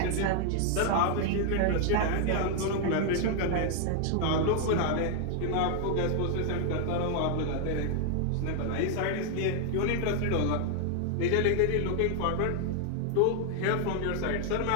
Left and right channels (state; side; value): different; both; correlation 0.00